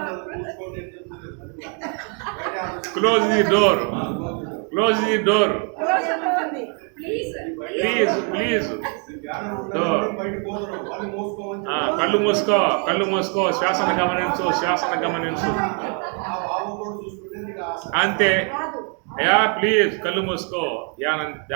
Close the door, close the door, please door. కళ్ళు మూసుకో, శ్వాసను గమనించు అంతే. అయ్యా ప్లీజ్ కళ్ళు మూసుకో,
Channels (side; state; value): left; quieter; 39.8 dB